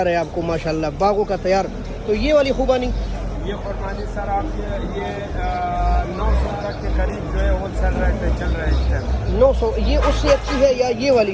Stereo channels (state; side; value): identical; both; correlation 1.00